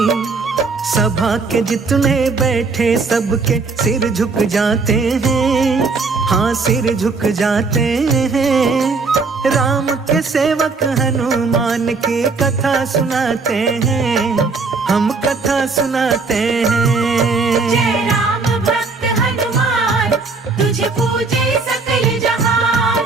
सभा के जितने बैठे सबके सिर झुक जाते हैं, हाँ सिर झुक जाते हैं। राम के सेवक हनुमान की कथा सुनाते हैं, हम कथा सुनाते हैं। जय राम भक्त हनुमान, तुझे पूजे सकल जहान।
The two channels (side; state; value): left; quieter; 4.2 dB